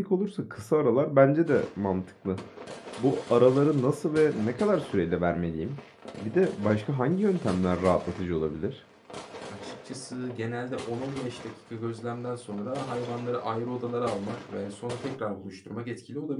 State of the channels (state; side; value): identical; both; correlation 1.00